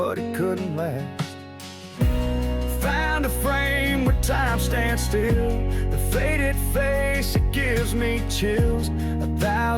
it couldn't last. Found a frame where time stands still, the faded face, it gives me chills.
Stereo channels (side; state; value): both; identical; correlation 1.00